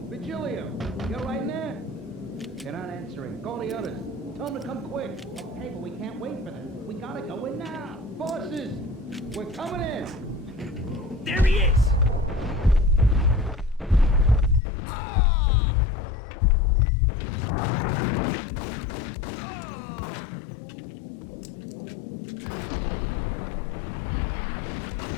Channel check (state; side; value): drops out; right; at 14.6 s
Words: Virgilio! You all right in there? They're not answering. Call the others. Tell them to come quick. Okay, but we can't wait for them. We gotta go in now. Bosses! We're coming in! There he is!